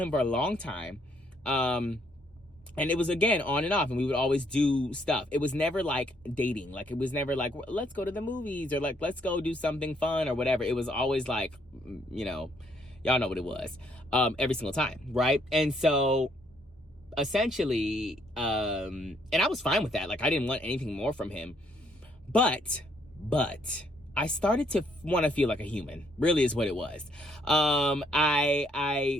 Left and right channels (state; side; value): normal; both; correlation 0.69